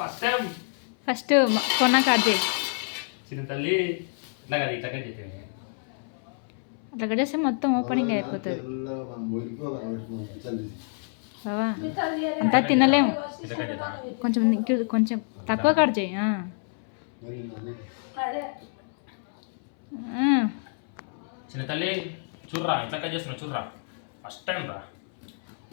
ఫస్ట్ టైం. ఫస్ట్ కొన్నా కట్ చేయి చిన్న తల్లి. ఇట్లా కదా, ఇట్లా కట్ చేయండి. అట్లా కట్ చేస్తే మొత్తం ఓపెనింగ్ అయిపోతుంది బావా. అంతా తినలేము, కొంచెం కొంచెం తక్కువ కట్ చేయి. చిన్న తల్లి చూర్రా, ఇట్లా కట్ చేస్తున్నా చూర్రా, ఫస్ట్ టైం రా.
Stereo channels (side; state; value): right; silent; 60 dB below the other